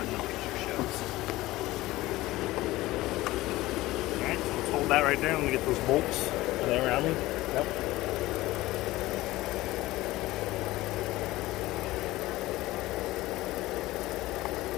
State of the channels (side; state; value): right; quieter; 18.0 dB